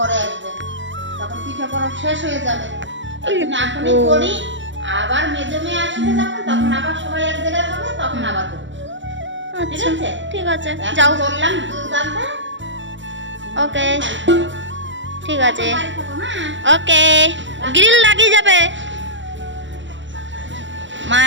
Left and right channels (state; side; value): late; left; 0.54 ms